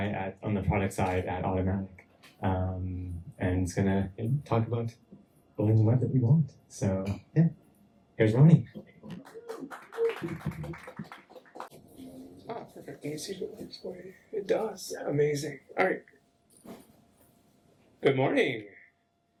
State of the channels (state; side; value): identical; both; correlation 1.00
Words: on the product side at Automattic. And he's going to talk about building the web that we want. So yeah, here's Ronnie. Ah, perfect. Can you see if it works for you? It does. Yeah. Amazing. All right. Good morning.